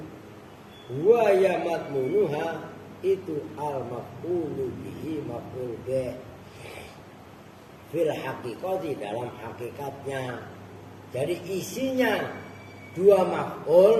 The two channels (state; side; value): identical; both; correlation 1.00